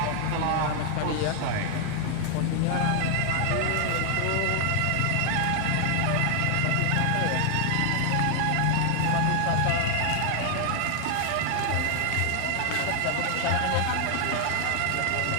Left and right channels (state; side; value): different; both; correlation 0.00